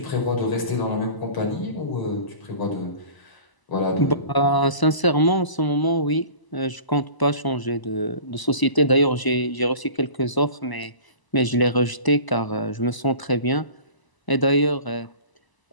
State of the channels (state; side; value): late; right; 1.0 ms